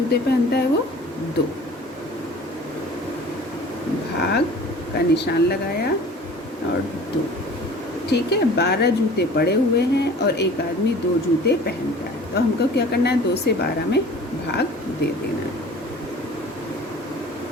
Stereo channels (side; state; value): both; normal; correlation 0.45